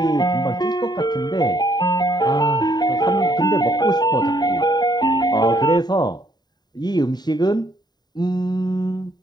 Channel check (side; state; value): right; late; 0.20 ms